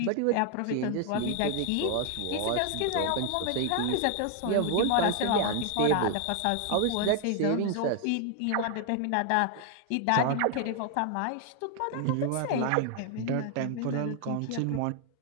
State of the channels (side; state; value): both; different; correlation 0.00